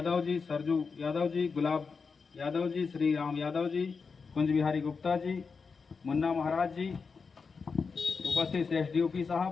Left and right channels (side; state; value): right; quieter; 5.1 dB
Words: जी, सरजू यादव जी, गुलाब यादव जी, श्री राम यादव जी, कुंज बिहारी गुप्ता जी, मुन्ना महाराज जी, उपस्थित एसडीओपी